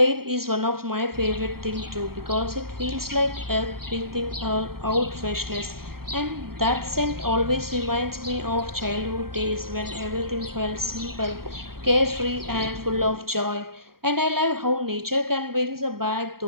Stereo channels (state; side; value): late; left; 0.93 ms